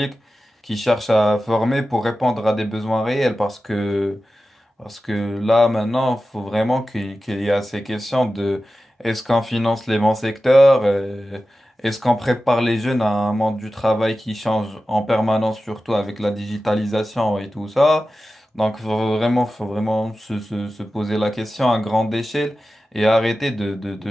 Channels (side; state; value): both; normal; correlation 0.94